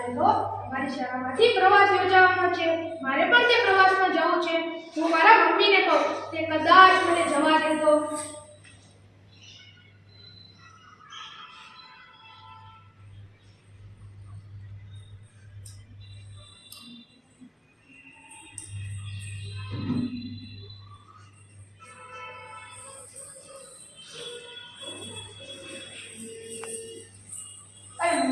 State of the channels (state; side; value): identical; both; correlation 1.00